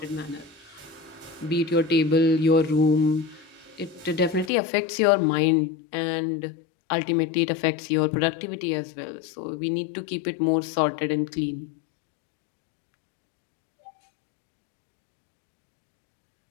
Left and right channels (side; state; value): right; drops out; at 4.5 s